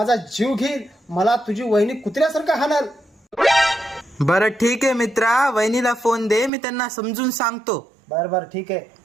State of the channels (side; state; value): left; drops out; at 6.5 s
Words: जीव घेईल. मला तुझी वहिनी कुत्र्यासारखं हाणल. बरं ठीक आहे मित्रा, वहिनीला फोन दे, मी त्यांना समजून सांगतो. बर बर ठीक आहे,